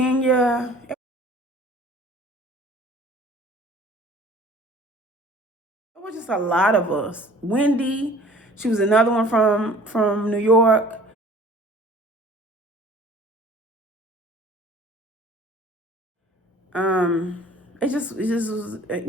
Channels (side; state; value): both; normal; correlation 0.49